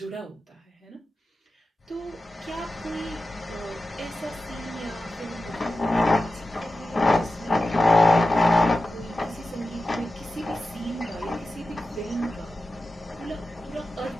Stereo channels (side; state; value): both; normal; correlation 0.93